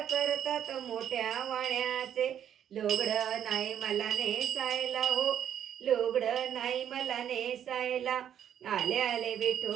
करतात मोठ्या वाण्याचे। लुगडं नाही मला नेसायला हो, लुगडं नाही मला नेसायला, आले आले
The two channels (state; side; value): quieter; left; 9.7 dB